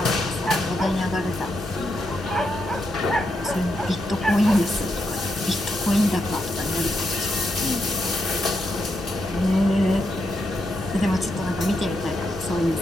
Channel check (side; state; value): both; normal; correlation 0.82